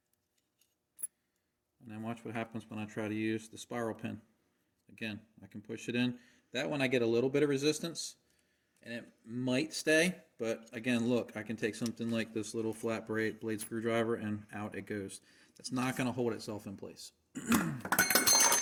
And then watch what happens when I try to use the spiral pin. Again, I can push it in. That one I get a little bit of resistance, and it might stay, but again, look, I can take something like this little flat blade screwdriver and out it goes. That's not going to hold itself in place.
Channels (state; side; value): identical; both; correlation 1.00